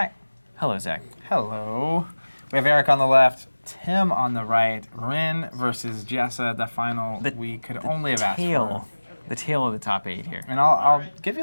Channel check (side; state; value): both; inverted; correlation -1.00